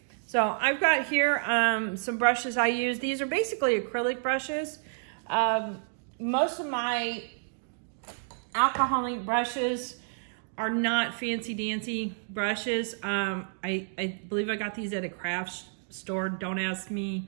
So I've got here some brushes I use. These are basically acrylic brushes. Most of my alcohol ink brushes are not fancy dancy brushes. I believe I got these at a craft store. Don't ask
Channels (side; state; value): left; silent; digital silence